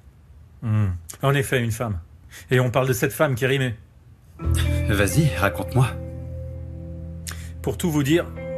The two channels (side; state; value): both; identical; correlation 1.00